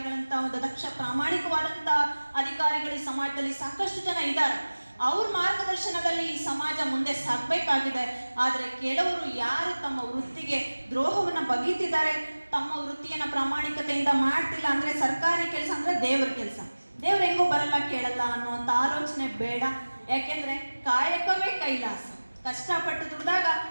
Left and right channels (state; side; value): inverted; both; correlation -1.00